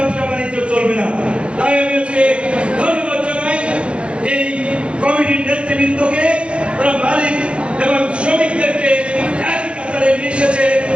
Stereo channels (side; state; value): left; late; 0.059 ms